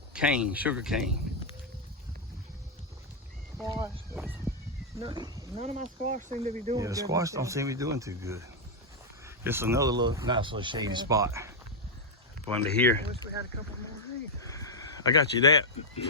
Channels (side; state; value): both; normal; correlation -0.01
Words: cane, sugar cane. Squash. None of my squash seem to be doing good. Yeah, the squash don't seem to be doing too good. Just another little nice little shady spot. Under here. I wish we had a couple more of these. I got you that